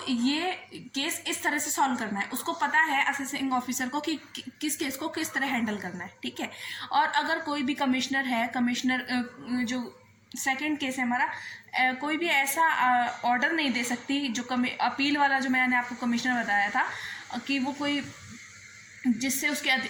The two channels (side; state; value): both; identical; correlation 1.00